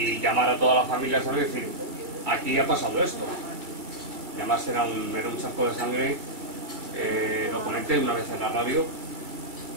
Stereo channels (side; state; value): left; late; 2.2 ms